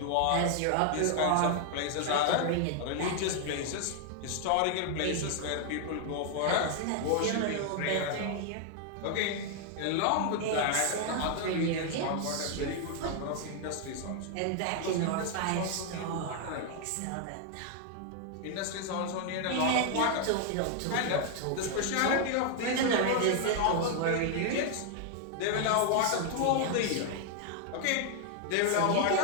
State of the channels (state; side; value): different; both; correlation 0.00